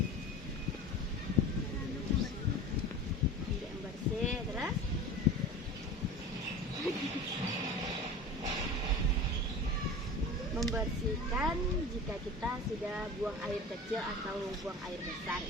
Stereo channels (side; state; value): both; normal; correlation 0.34